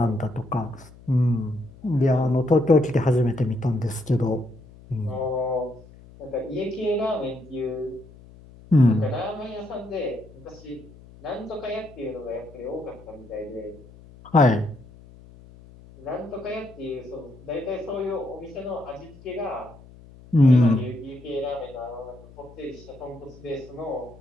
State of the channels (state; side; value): noise; left; hum, 21 dB below the sound